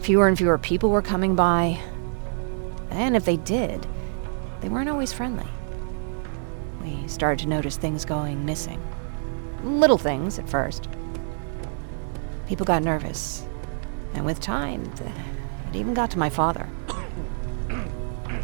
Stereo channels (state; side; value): silent; left; digital silence